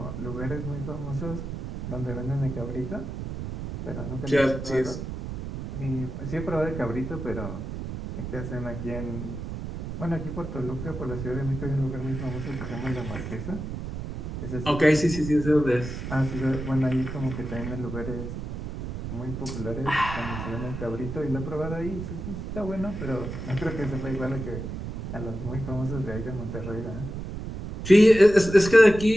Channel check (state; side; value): noise; right; rumble, 7 dB below the sound